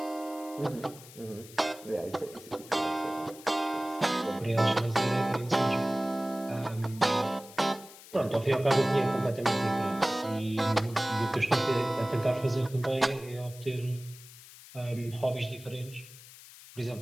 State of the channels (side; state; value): left; noise; hiss, 18 dB below the sound